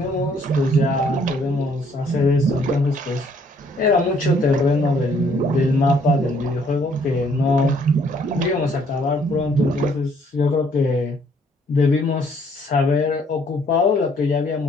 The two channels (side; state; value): both; normal; correlation 0.64